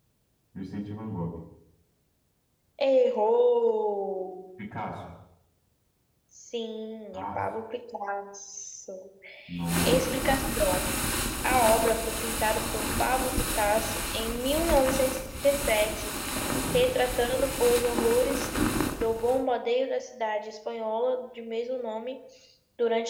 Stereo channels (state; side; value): identical; both; correlation 1.00